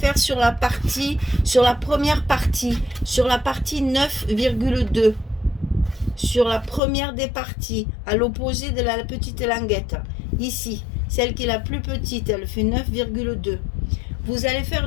sur la première partie, sur la partie 9,2, sur la première des parties, à l'opposé de la petite languette, ici, celle qui est la plus petite, elle fait 9,2. Vous allez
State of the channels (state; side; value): drops out; right; at 6.8 s